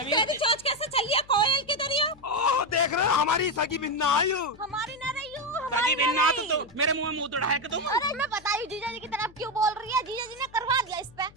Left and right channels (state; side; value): noise; left; hum, 24 dB below the sound